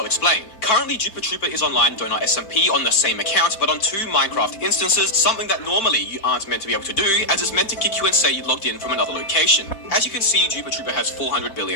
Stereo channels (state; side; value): late; right; 4.5 ms